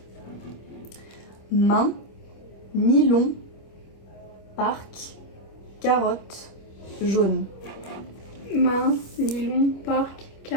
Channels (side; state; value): right; late; 25 ms